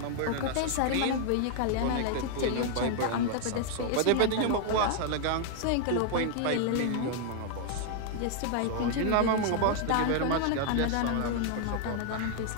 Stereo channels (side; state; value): both; different; correlation 0.00